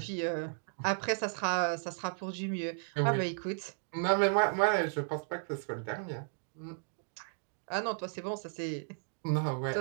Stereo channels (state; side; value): silent; left; digital silence